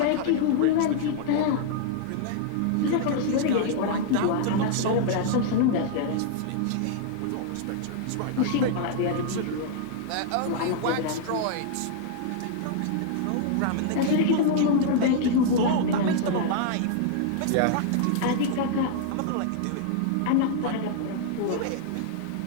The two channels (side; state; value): both; different; correlation -0.01